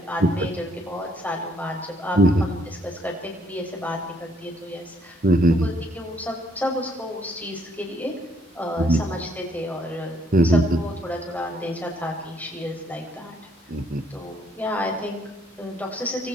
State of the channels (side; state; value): both; normal; correlation 0.68